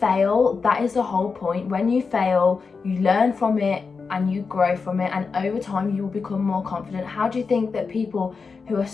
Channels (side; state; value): right; quieter; 4.9 dB